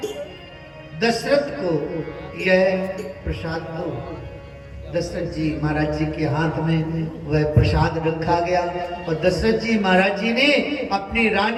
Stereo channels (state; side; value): identical; both; correlation 1.00